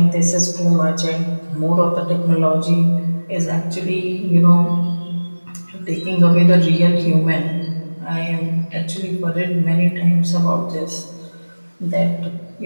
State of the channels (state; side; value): inverted; both; correlation -1.00